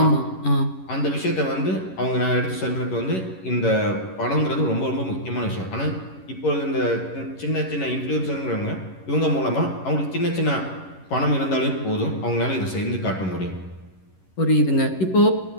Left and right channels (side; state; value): right; late; 11 ms